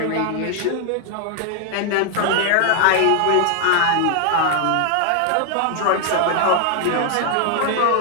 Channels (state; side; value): different; both; correlation 0.00